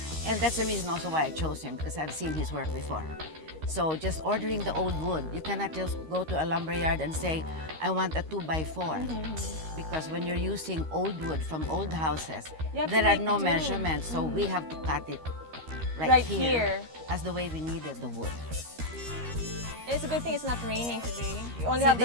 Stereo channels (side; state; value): left; late; 13 ms